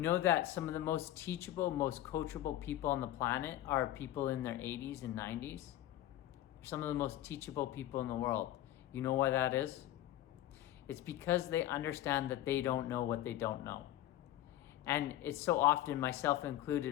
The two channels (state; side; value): quieter; right; 13.7 dB